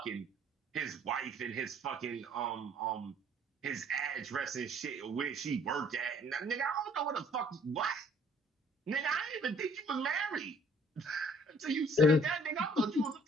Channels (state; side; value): normal; both; correlation 0.59